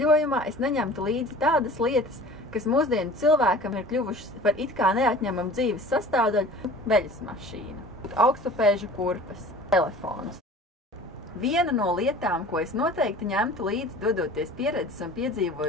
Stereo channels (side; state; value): both; normal; correlation 0.43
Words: es neņemtu līdzi tādas lietas, kas mūsdienu cilvēkam ir kļuvušas par it kā neatņemamu dzīves sastāvdaļu – veļas mašīna, augstupēžu kurpes, telefons. Viena no lietām, ko es noteikti ņemtu līdzi, dodoties pieredzes un